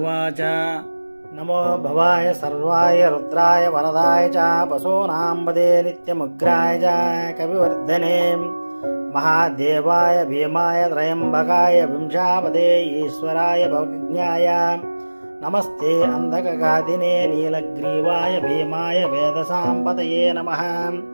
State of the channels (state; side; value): inverted; both; correlation -1.00